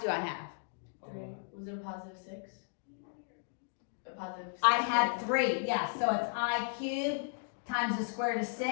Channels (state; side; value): silent; right; digital silence